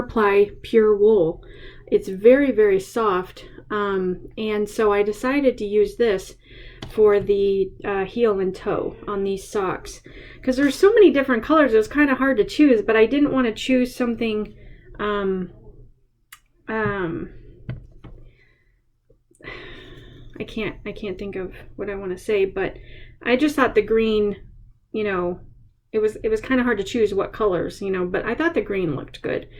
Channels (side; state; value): both; identical; correlation 1.00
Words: pure wool. It's very, very soft. And so I decided to use this for the heel and toe on these socks. Because there's so many different colors, it was kind of hard to choose, but I didn't want to choose something I can't think of what I want to say, but I just thought the green, it was kind of hard to choose what colors, but I thought the green looked good.